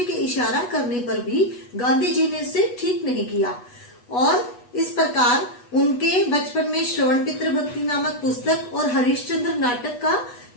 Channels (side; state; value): right; late; 8.2 ms